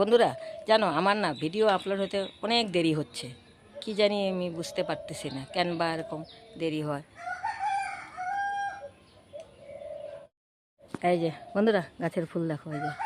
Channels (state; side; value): identical; both; correlation 1.00